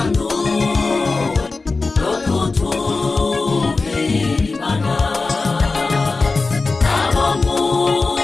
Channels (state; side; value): quieter; right; 3.8 dB